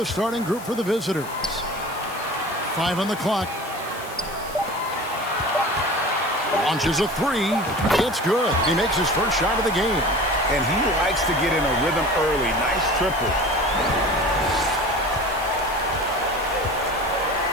starting group for the visitors. 5 on the clock. Launches a three. It's good. He makes his first shot of the game. And he likes to get in a rhythm early. Nice triple.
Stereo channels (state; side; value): noise; left; hiss, 16 dB below the sound